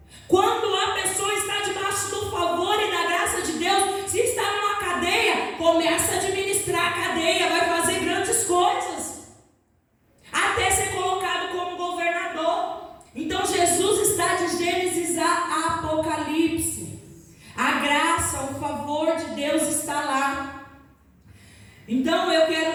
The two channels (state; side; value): identical; both; correlation 1.00